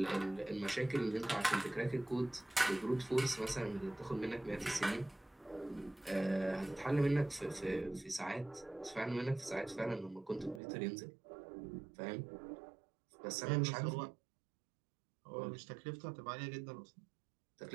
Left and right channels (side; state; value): left; drops out; at 10.6 s